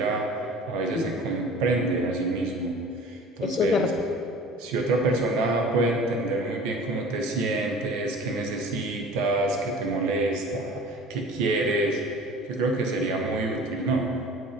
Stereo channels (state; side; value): normal; both; correlation 0.44